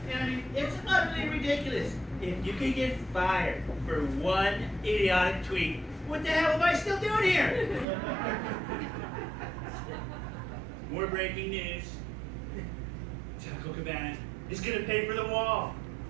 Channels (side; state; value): left; drops out; at 7.9 s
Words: and I mean, it's utterly ridiculous. If you could get fired for one idiotic tweet, what the hell am I still doing here? More breaking news. Taco Cabana is going to pay for the wall.